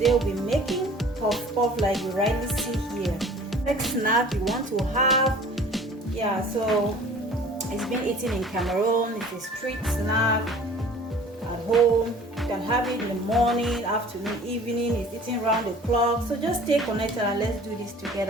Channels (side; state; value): both; normal; correlation 0.47